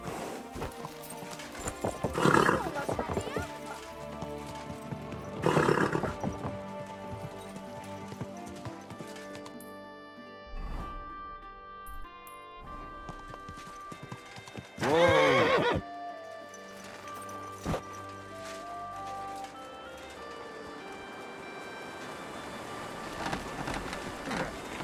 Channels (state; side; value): identical; both; correlation 1.00